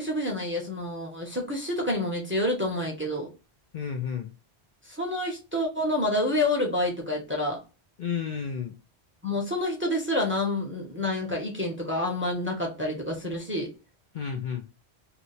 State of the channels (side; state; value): both; normal; correlation 0.03